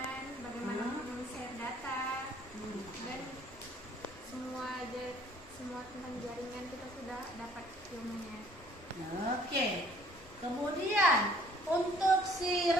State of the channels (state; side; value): normal; both; correlation 0.58